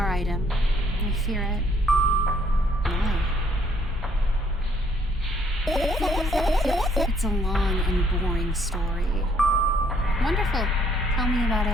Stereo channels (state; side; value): normal; both; correlation 0.66